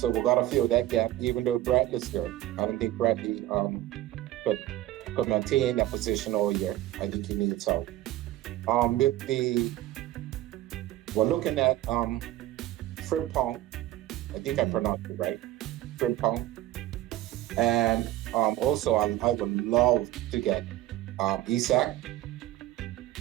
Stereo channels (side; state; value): left; quieter; 14.9 dB